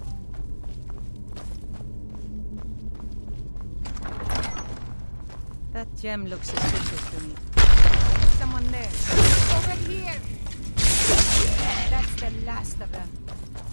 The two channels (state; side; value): inverted; both; correlation -1.00